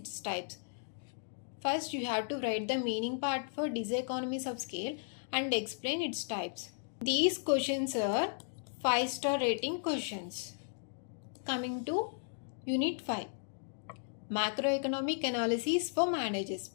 types. First, you have to write the meaning part for diseconomies of scale and explain its types. These questions are 5-star rating questions. Coming to Unit 5, Macroeconomic Analysis for Managers,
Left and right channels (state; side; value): silent; right; digital silence